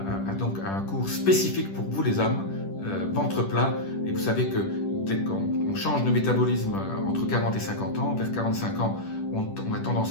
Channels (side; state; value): right; late; 10 ms